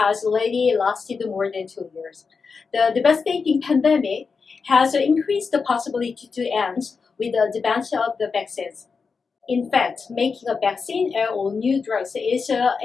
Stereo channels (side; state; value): right; quieter; 5.1 dB